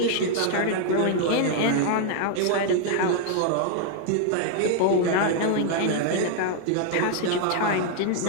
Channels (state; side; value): different; both; correlation 0.00